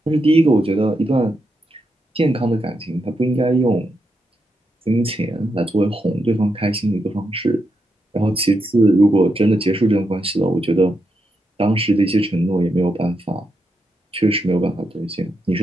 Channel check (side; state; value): both; normal; correlation 0.84